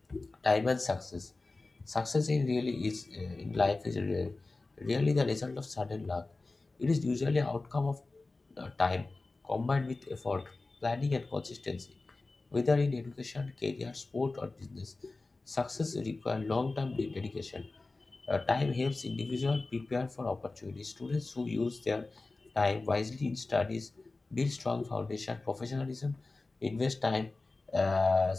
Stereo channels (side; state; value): right; quieter; 3.4 dB